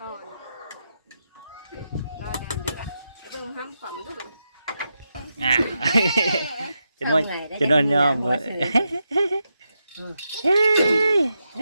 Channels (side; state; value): both; inverted; correlation -0.86